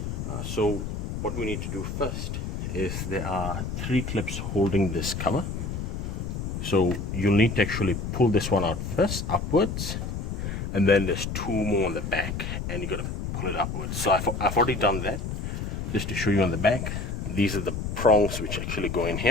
So what we need to do first is there are 3 clips holding this cover. So you'll need to actually pull this one out first, upwards, and then there's 2 more on the back, and you gotta pull it upwards. So I've already done that, just to show you on the back. These are the prongs which actually go in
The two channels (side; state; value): left; noise; rumble, 4 dB below the sound